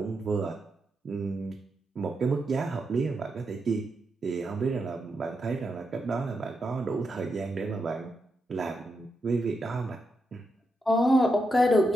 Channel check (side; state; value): both; normal; correlation 0.85